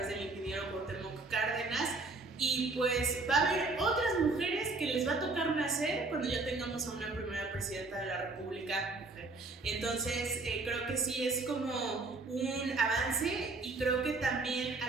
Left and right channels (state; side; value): quieter; left; 3.6 dB